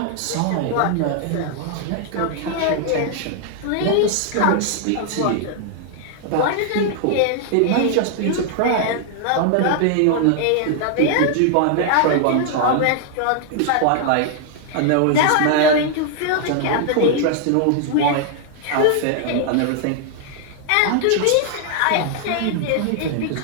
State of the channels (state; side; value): different; both; correlation 0.00